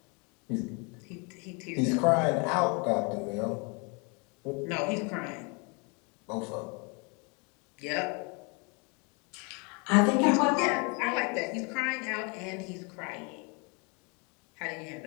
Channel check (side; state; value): right; quieter; 32.4 dB